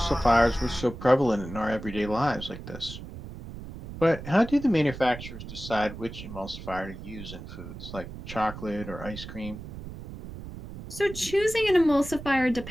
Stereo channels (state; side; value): noise; right; rumble, 12 dB below the sound